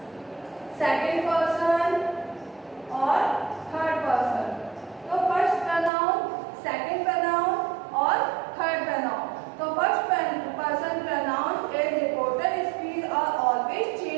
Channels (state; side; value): drops out; left; at 5.9 s